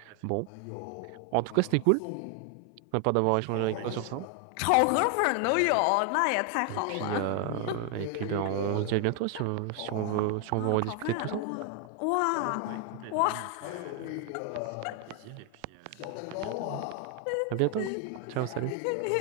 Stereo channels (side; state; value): both; different; correlation 0.00